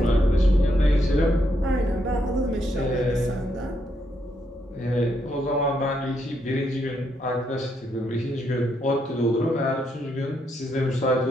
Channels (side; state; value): both; normal; correlation 0.77